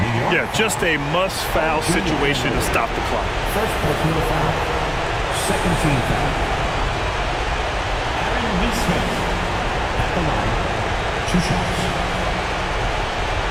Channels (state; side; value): identical; both; correlation 1.00